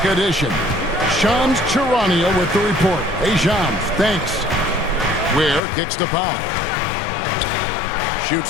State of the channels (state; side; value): drops out; right; at 5.6 s